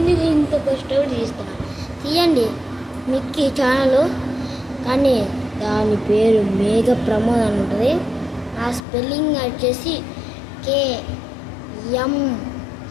ఇంత కష్టపడి తీయండి మీకు ఈ ఛానల్, కానీ దాని పేరు మేఘ ప్రమోద్ అని ఉంటుంది. ఆ స్పెల్లింగ్ వచ్చేసి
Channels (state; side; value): drops out; right; at 8.8 s